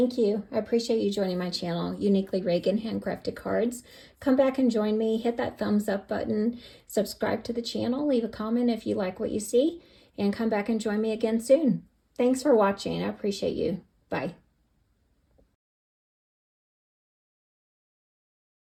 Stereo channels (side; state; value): both; identical; correlation 1.00